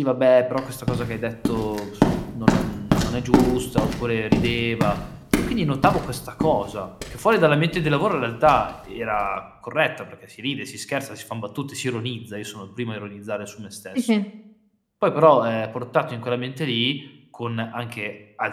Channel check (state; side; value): identical; both; correlation 1.00